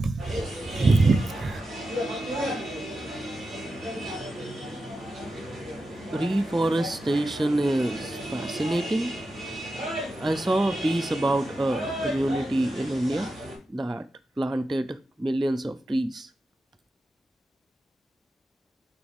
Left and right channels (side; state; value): both; normal; correlation 0.91